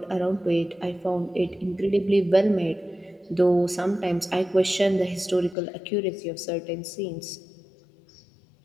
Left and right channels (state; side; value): drops out; right; at 5.6 s